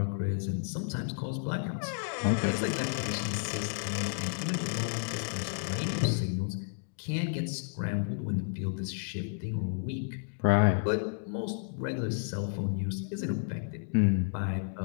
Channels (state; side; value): silent; right; digital silence